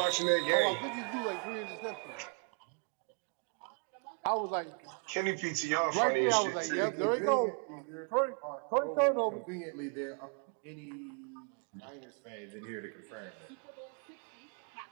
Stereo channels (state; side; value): quieter; left; 38.5 dB